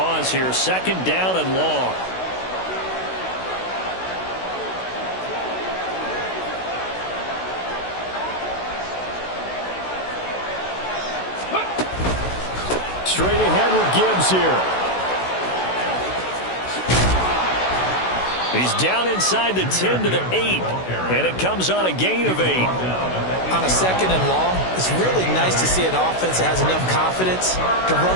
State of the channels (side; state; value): right; late; 16 ms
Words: here. 2nd down and long. Straight ahead with Gibbs here. He's down inside the 10 to the 8. And it comes on a gain of 8. On a 2nd and long, it's really nice to see an offense that has enough confidence to